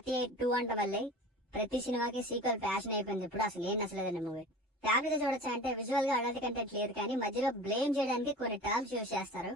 2 అంట వల్లే ప్రతి సినిమాకి సీక్వెల్ ఫ్యాషన్ అయిపోయింది. ఇప్పుడు అసలు ఏం నచ్చలేదండి మూవీ. ఫ్యామిలీతో చూడొచ్చు అంటే విజువల్ గా అడల్ట్ కంటెంట్ లేదు, కానీ మధ్యలో బ్లేమ్ చేయడానికి కొన్ని టర్మ్స్ యూజ్ చేస్తారు,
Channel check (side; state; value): both; normal; correlation 0.37